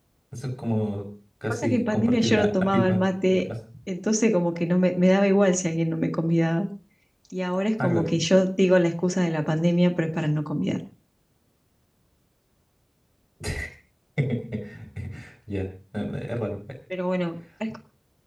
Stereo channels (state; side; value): identical; both; correlation 1.00